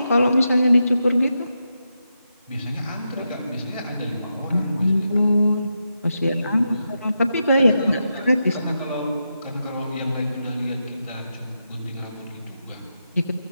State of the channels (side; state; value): both; inverted; correlation -0.87